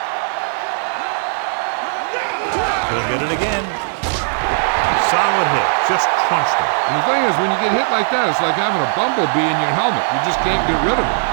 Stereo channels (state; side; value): silent; left; 67 dB below the other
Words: He'll get it again. Solid hit. Just crunched him. And the thing is, when you get hit like that, it's like having a bumblebee in your helmet. You just can't get rid of it.